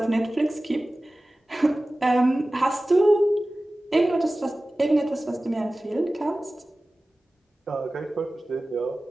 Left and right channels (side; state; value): both; normal; correlation 0.97